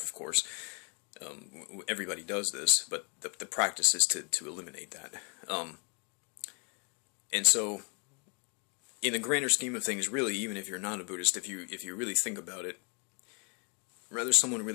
of course. Everybody does this, but the practice is to eliminate that. And so, in the grander scheme of things, really, even if you're not a Buddhist, if you really think about it, whether someone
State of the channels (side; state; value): right; quieter; 37.3 dB